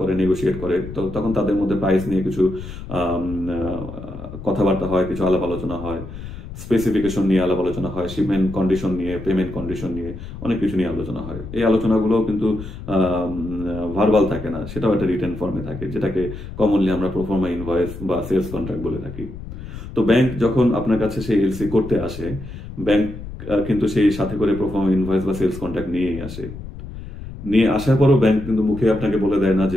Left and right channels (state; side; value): noise; left; rumble, 11 dB below the sound